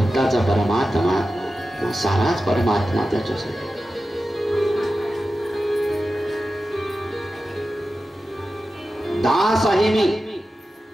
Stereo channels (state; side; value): normal; both; correlation 0.93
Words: परमात्मा, साराच परमात्मा त्याच्यासाठी. दास आहे मी.